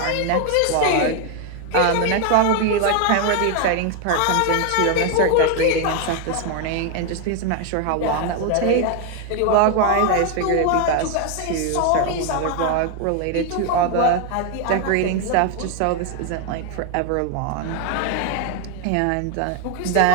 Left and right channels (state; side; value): different; both; correlation 0.01